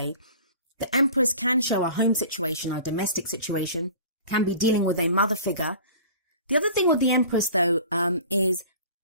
The Empress can show a home situation, a domestic situation, can be dealing with a mother figure. The other thing with the Empress, though, is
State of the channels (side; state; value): both; inverted; correlation -0.43